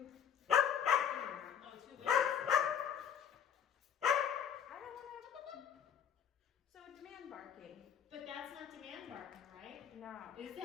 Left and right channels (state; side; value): quieter; right; 8.4 dB